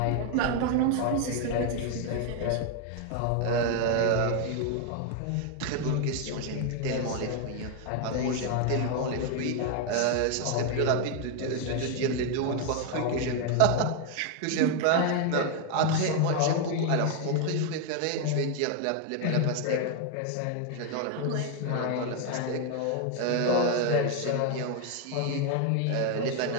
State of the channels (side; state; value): both; different; correlation 0.01